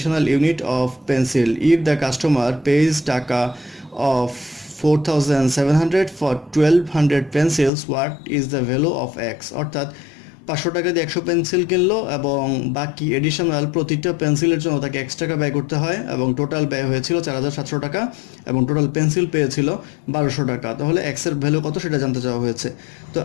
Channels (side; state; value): right; drops out; at 7.7 s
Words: unit of pencil if the customer pays টাকা of 4700 for 1200 pencils what is the value of X. অর্থাৎ 500 টাকা দিয়ে 100 পেন্সিল কিনলো এবং বাকি এডিশনাল প্রতিটা পেন্সিলের জন্য তাকে এক্স টাকা ব্যয় করতে হয় এবং টোটাল ব্যয় হয়েছিল 4700 টাকা এবং টোটাল পেন্সিল পেয়েছিল 1200 টাকা। তাহলে এক্সের ভ্যালু কত সেটা জানতে চাওয়া হয়েছে। তো